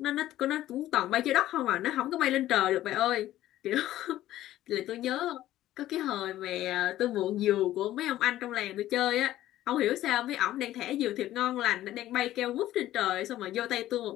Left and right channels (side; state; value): right; quieter; 14.0 dB